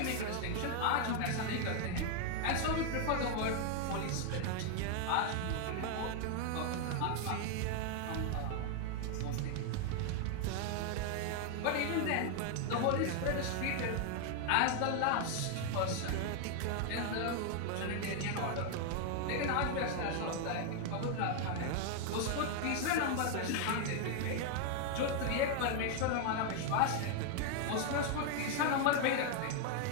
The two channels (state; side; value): different; both; correlation 0.00